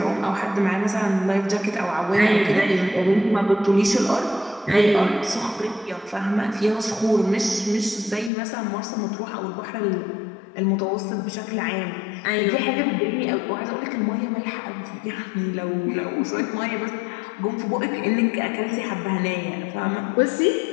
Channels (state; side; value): drops out; right; at 8.3 s